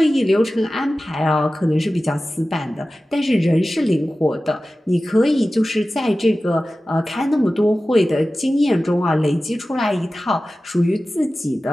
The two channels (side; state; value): both; normal; correlation 0.95